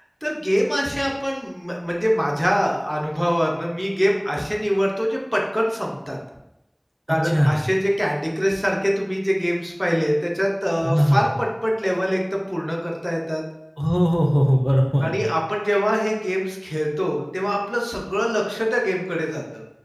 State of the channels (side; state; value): both; identical; correlation 1.00